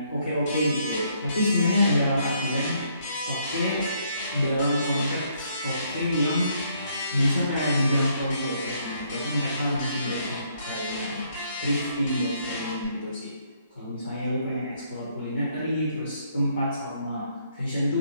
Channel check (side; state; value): both; inverted; correlation -0.69